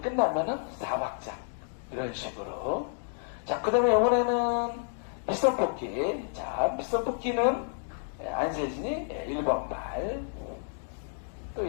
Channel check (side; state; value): right; silent; 58 dB below the other